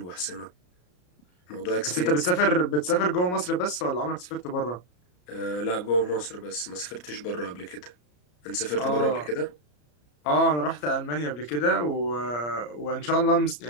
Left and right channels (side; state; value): right; late; 33 ms